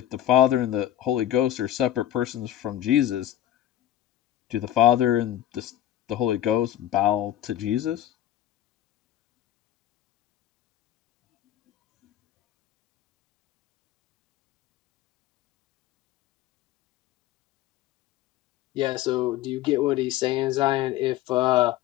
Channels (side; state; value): right; quieter; 12.6 dB